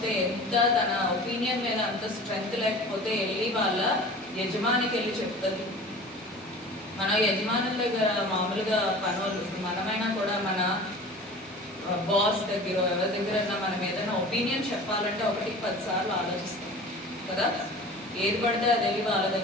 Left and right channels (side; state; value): both; normal; correlation 0.40